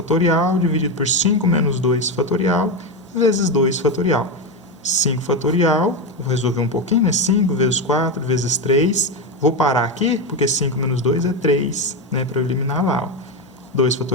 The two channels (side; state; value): both; normal; correlation 0.12